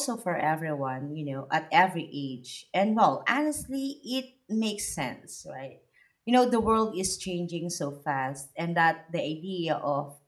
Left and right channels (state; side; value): identical; both; correlation 1.00